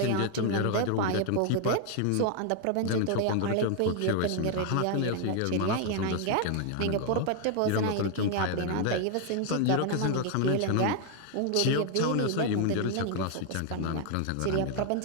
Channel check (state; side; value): different; both; correlation 0.00